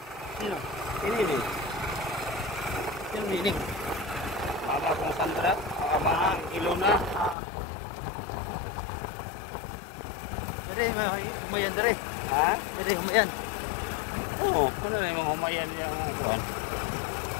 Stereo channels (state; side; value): drops out; right; at 7.4 s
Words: Sino? Pinili. Sino meaning? Mama kong Sandra, Mama Ilona. Dire, humayan dire. Ha? Dire, humayan. Oo, kung na yung humayan niya ang kuwan.